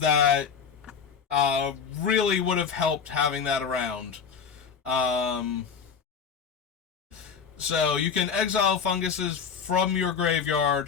really would have helped having that around. So you can exile funguses from your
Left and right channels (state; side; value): quieter; right; 6.5 dB